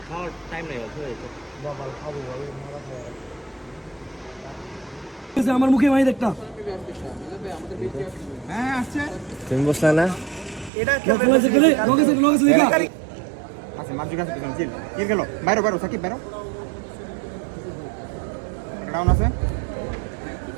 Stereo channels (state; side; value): drops out; left; at 10.7 s